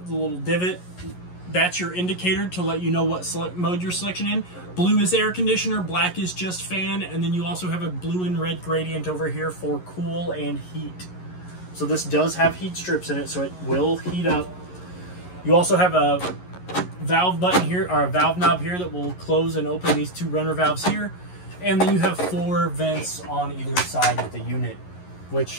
divot. That's your indicator to let you know what mode you're selection in. Blue is air conditioner, black is just fan, and then you also have a blue and red gradient over here for cool and heat. So this does have heat strips in it, so it will heat up. You also have a valve button here, or a valve knob here, that will close and open these 2 runner valves here. And then you have 4 vents on either side of the unit,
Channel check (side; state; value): right; late; 11 ms